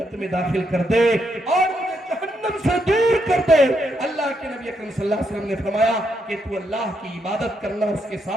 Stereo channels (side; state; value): both; normal; correlation 0.78